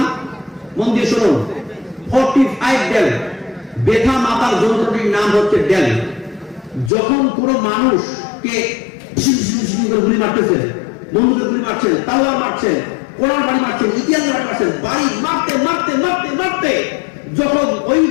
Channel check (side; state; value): right; drops out; at 6.9 s